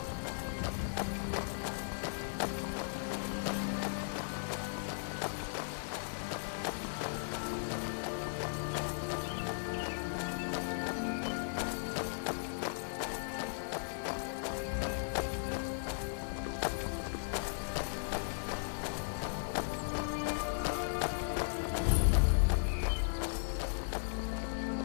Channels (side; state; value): right; silent; digital silence